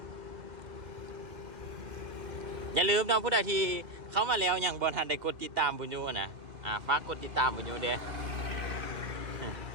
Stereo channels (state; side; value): late; left; 2.1 ms